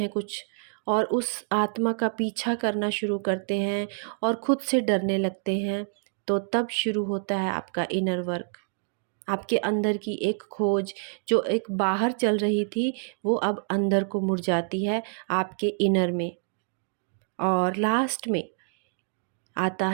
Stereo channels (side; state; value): left; silent; 60 dB below the other